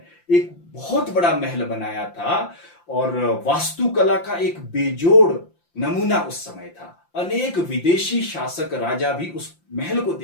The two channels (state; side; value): late; right; 5.8 ms